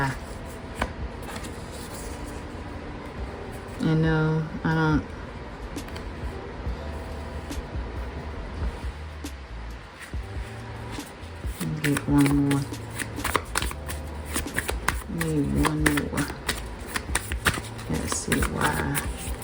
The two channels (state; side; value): identical; both; correlation 1.00